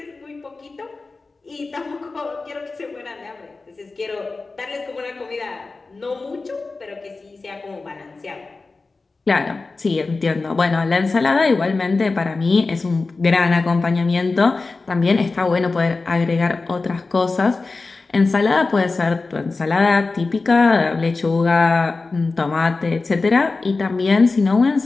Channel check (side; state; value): right; quieter; 3.8 dB